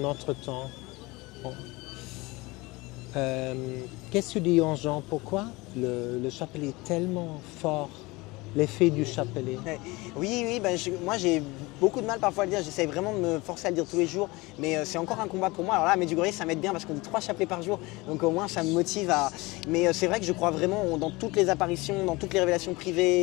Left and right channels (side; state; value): right; quieter; 22.9 dB